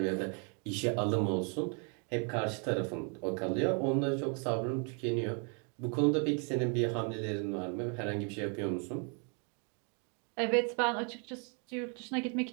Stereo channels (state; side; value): quieter; left; 38.4 dB